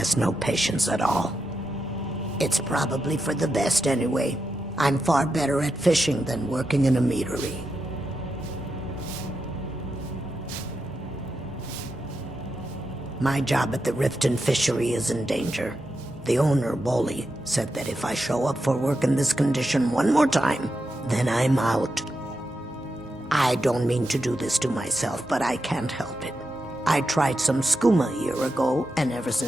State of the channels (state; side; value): normal; both; correlation 0.87